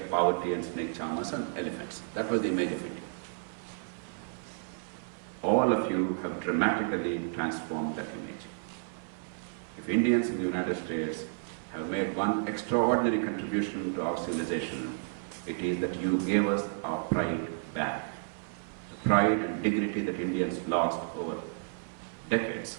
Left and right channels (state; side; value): silent; left; 55 dB below the other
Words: poverty and snake charmers and elephants. That was the image of India. All of you have dramatically transformed that image. If Indians in the United States have made one extraordinary contribution to our civilization, it is that you gave us our pride back. The pride and dignity that Indians lost over decades.